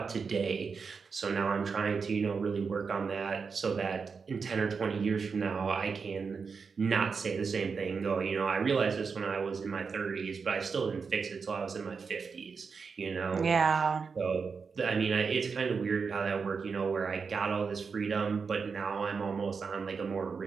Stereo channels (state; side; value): quieter; left; 5.4 dB